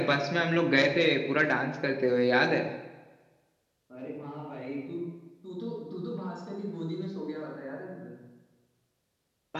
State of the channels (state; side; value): identical; both; correlation 1.00